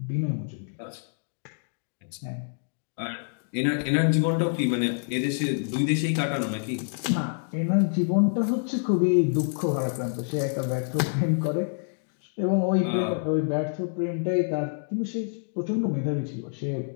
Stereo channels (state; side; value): silent; right; digital silence